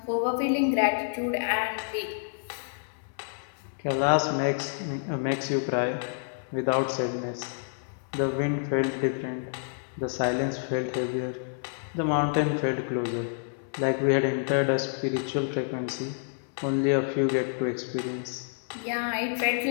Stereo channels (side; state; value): right; silent; 59 dB below the other